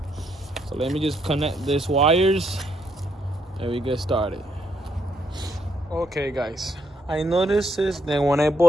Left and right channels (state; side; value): normal; both; correlation 0.75